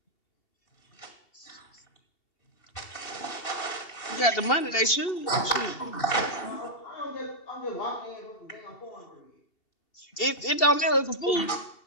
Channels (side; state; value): right; late; 2.7 ms